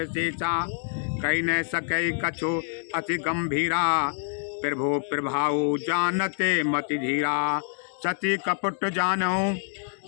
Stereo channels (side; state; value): right; silent; digital silence